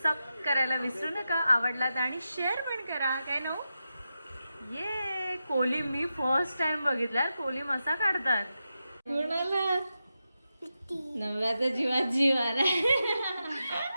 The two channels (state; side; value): inverted; both; correlation -0.89